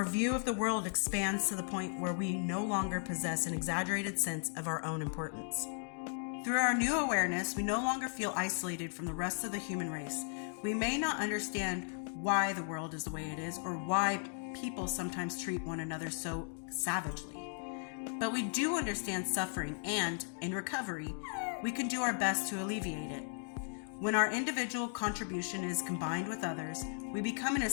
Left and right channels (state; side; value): silent; right; 54 dB below the other